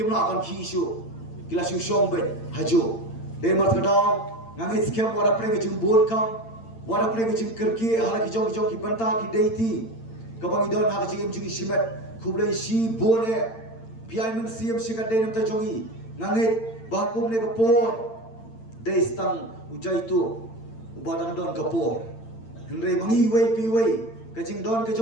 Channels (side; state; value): right; late; 8.9 ms